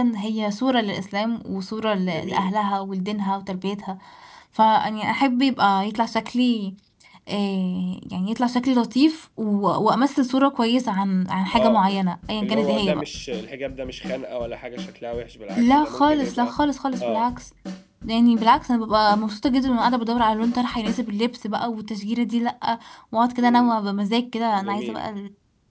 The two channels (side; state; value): both; identical; correlation 1.00